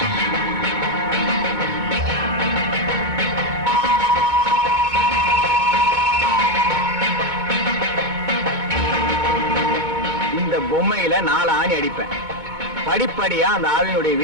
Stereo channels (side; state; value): left; late; 2.2 ms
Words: இந்த பொம்மையில 4 ஆணி அடிப்பேன். படிப்படியா அந்த ஆவியினுடைய